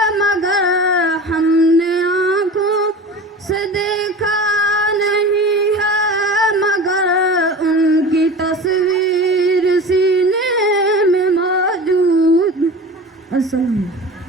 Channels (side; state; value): both; normal; correlation 0.34